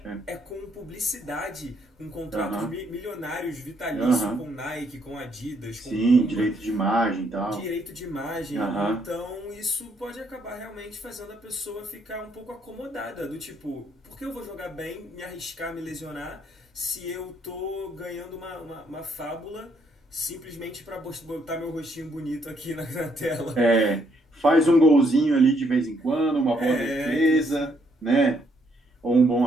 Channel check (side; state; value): both; normal; correlation 0.71